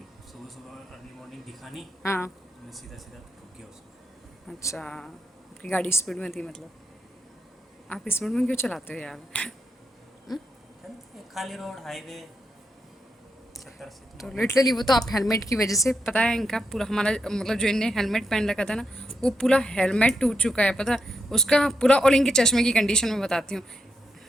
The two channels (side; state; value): both; normal; correlation 0.83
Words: सुबह सुबह अर्ली मॉर्निंग दिखा नहीं, हाँ। तो मैं सीधा सीधा ठुक गया उसको। अच्छा, आपकी गाड़ी स्पीड में थी मतलब? आप स्पीड में क्यों चलाते हो यार? जानते हैं, खाली रोड हाईवे 70 80 तो तो नॉर्मल लिटरली वो चलता तो आप हेलमेट की वजह से, पता है इनका पूरा हमारा मतलब जो इनने हेलमेट पहन रखा था ना, वो पूरा हेलमेट टूट चुका है, पता है उसका पूरा। और इनके चश्मे की कंडीशन में बताती हूँ, है।